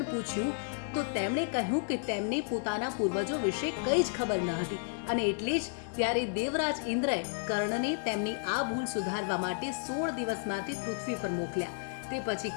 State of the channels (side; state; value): right; silent; digital silence